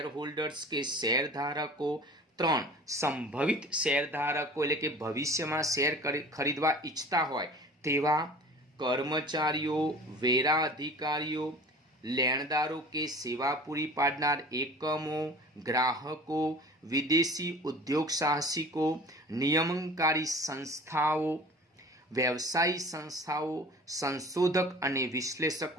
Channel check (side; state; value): both; normal; correlation 0.42